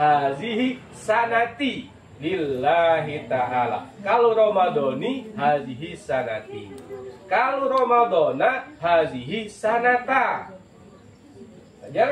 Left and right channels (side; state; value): both; identical; correlation 1.00